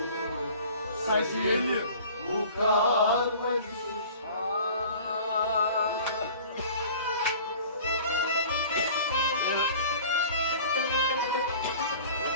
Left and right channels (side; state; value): both; inverted; correlation -0.45